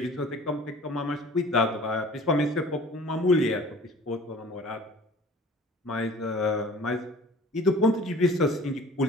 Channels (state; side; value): normal; both; correlation 0.46